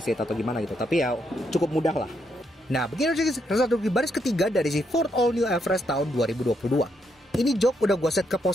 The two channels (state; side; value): normal; both; correlation 0.77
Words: atau gimana gitu, tapi ya cukup mudah lah. Nah, begini result di baris ketiga dari si Ford All New Everest tahun 2022. Ini jok udah gue set ke